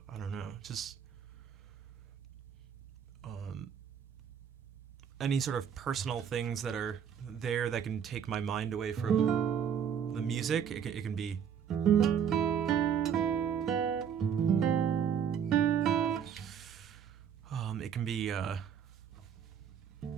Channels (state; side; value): quieter; left; 8.1 dB